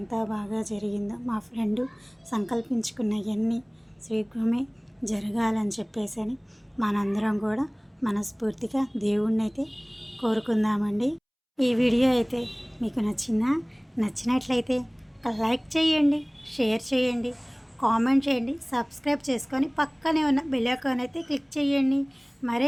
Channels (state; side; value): identical; both; correlation 1.00